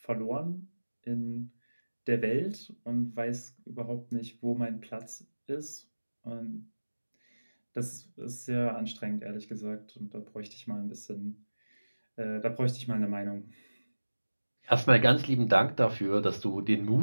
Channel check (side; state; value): both; inverted; correlation -1.00